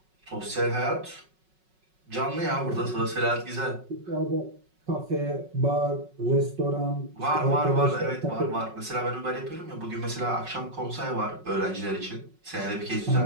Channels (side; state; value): left; late; 5.4 ms